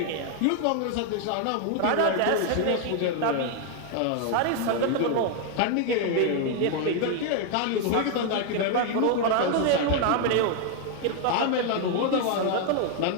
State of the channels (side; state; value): both; different; correlation 0.00